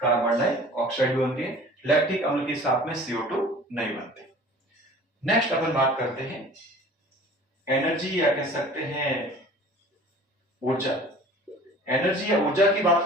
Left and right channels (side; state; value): both; normal; correlation 0.45